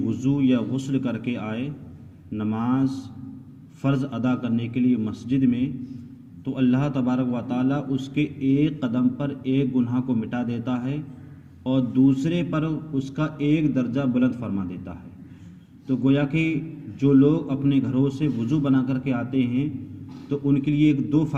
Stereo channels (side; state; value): both; identical; correlation 1.00